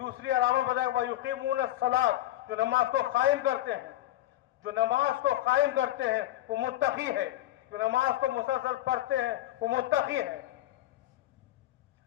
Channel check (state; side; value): quieter; right; 14.7 dB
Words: علامت بتایا گیا وَيُقِيمُونَ الصَّلَاةَ، جو نماز کو قائم کرتے ہیں، جو نماز کو قائم کرتے ہیں وہ متقی ہے، جو نماز کو مسلسل پڑھتے ہیں وہ متقی ہے۔